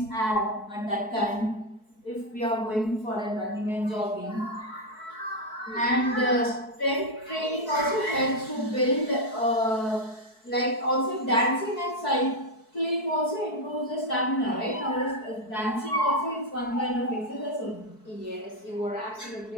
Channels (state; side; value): late; right; 4.6 ms